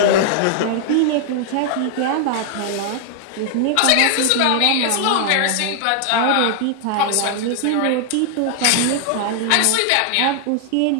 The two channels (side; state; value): both; different; correlation 0.00